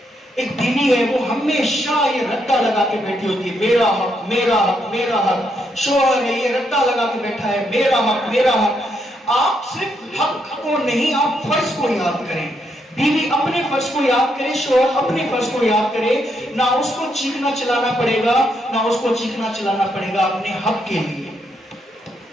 ایک بیوی ہے وہ ہمیشہ یہ رٹا لگا کے بیٹھی ہوتی ہے, میرا حق میرا حق میرا حق. شوہر ہے یہ رٹا لگا کے بیٹھا ہے, میرا حق میرا حق. آپ صرف حق کو نہیں, آپ فرض کو یاد کریں. بیوی اپنے فرض کو یاد کرے, شوہر اپنے فرض کو یاد کرے. نہ اس کو چیخنا چلانا پڑے گا, نہ اس کو چیخنا چلانا پڑے گا اپنے حق کے لیے.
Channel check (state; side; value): normal; both; correlation 0.78